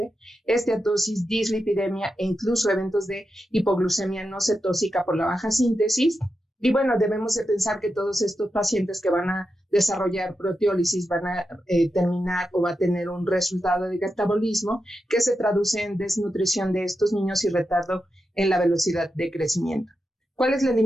esteatosis, dislipidemia e incluso eventos de hipoglucemia no cetósica por la baja síntesis. Y bueno, debemos de pensar que todos estos pacientes que van a desarrollar proteólisis van a terminar o va a tener un resultado de catabolismo que se traduce en desnutrición de estos niños y retardo en la velocidad de crecimiento. ¿Cuál es la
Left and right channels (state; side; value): normal; both; correlation 0.88